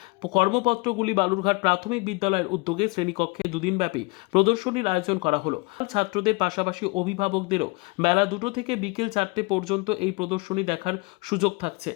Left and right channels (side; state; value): right; quieter; 28.7 dB